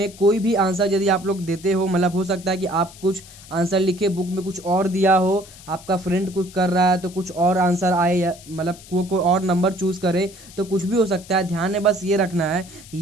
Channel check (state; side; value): noise; left; hiss, 20 dB below the sound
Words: कोई भी आंसर यदि आप लोग देते हो, मतलब हो सकता है कि आप कुछ आंसर लिखे, बुक में कुछ और दिया हो, आपका फ्रेंड कुछ कर रहा है तो कुछ और आंसर आए, या मतलब कोई और नंबर चूज करे, तो कुछ भी हो सकता है। ध्यान में बस ये रखना है कि